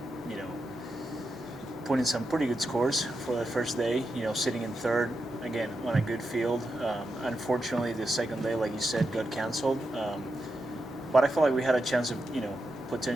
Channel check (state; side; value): normal; both; correlation 0.86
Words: you know, put in some pretty good scores for the first day. Sitting in third again on a good field. Unfortunately, the second day, like you said, got canceled. But I felt like we had a chance of